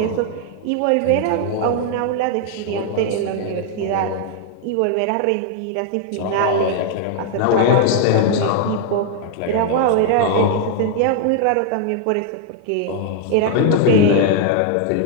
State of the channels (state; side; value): different; both; correlation 0.00